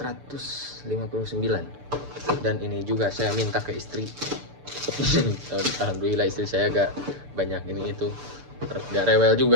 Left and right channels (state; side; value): late; left; 6.8 ms